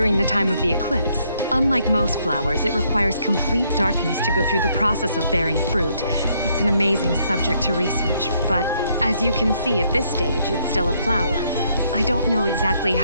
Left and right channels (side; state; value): both; inverted; correlation -0.71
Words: the time of the eclipse. Unlike most flowers, it requires complete darkness to go through the process of bearing fruit. It's an amazing subject to research, but as you can see at this stage, it's still a flower. I don't know exactly